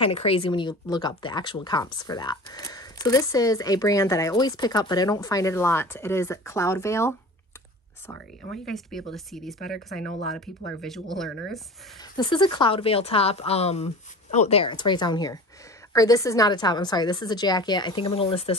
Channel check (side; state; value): both; normal; correlation 0.38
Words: of crazy when you look up the actual comps for that. So this is a brand that I always pick up, but I don't find it a lot. It is Cloudveil. Sorry, I want you guys to be able to see these better because I know a lot of people are visual learners. This is a Cloudveil top. Oh, there, it's right down here. Or this is not a top, I'm sorry, this is a jacket. I think I'm going to list